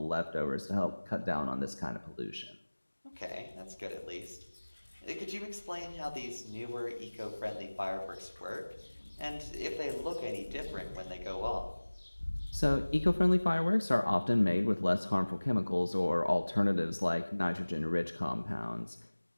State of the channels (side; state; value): both; inverted; correlation -1.00